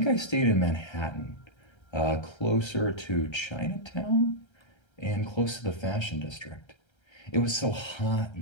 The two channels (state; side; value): late; right; 1.3 ms